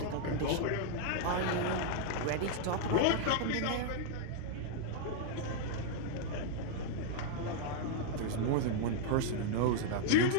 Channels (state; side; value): different; both; correlation -0.01